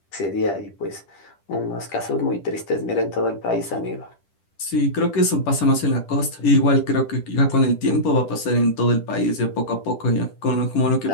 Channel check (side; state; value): right; late; 10 ms